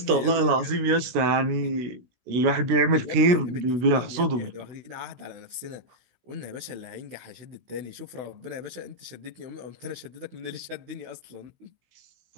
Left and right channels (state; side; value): late; left; 16 ms